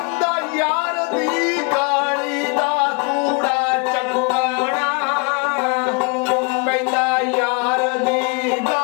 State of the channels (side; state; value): right; quieter; 32.0 dB